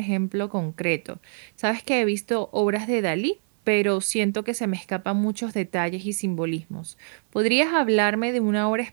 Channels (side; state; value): left; silent; 62 dB below the other